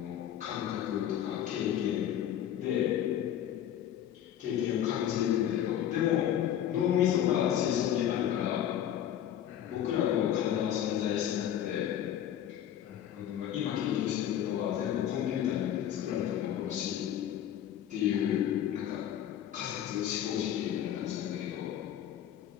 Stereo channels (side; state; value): right; quieter; 10.7 dB